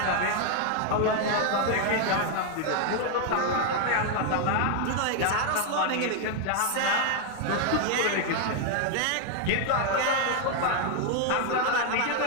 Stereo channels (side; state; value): both; different; correlation 0.00